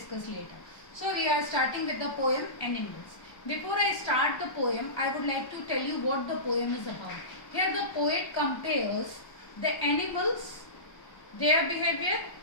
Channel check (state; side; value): late; right; 1.3 ms